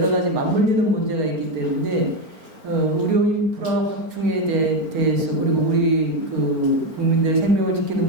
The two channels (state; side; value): late; left; 4.4 ms